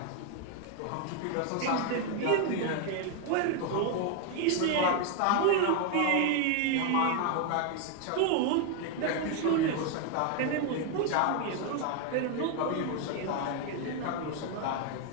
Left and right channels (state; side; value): different; both; correlation 0.01